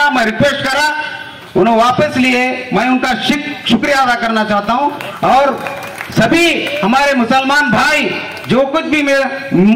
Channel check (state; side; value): identical; both; correlation 1.00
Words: मैं रिक्वेस्ट करा, उन्होंने वापस लिए। मैं उनका शुक्रिया अदा करना चाहता हूँ। और सभी हमारे मुसलमान भाई जो कुछ भी